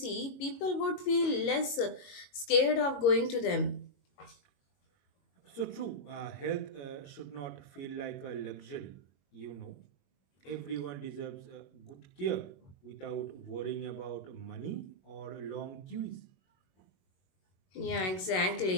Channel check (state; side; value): late; right; 21 ms